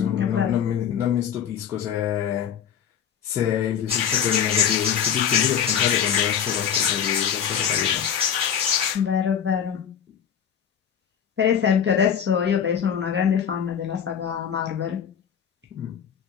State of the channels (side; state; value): right; quieter; 8.4 dB